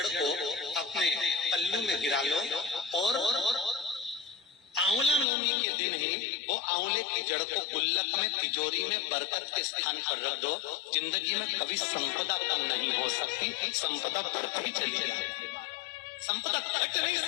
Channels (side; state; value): right; drops out; at 5.2 s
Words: को अपने पल्लू में गिरा लो और आंवला नवमी के दिन ही वो आंवले की जड़ को गुल्लक में, तिजोरी में, बरकत के स्थान पर रख दो। जिंदगी में कभी संपदा कम नहीं हो सकती, संपदा बढ़ती चली जाएगी, संपदा घट नहीं